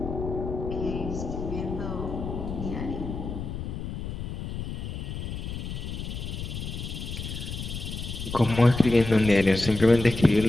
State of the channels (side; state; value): left; noise; rumble, 6 dB below the sound